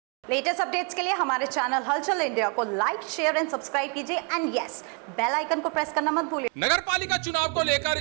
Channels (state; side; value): quieter; left; 37.6 dB